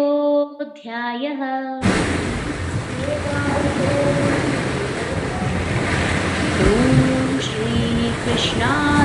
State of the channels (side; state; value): both; identical; correlation 1.00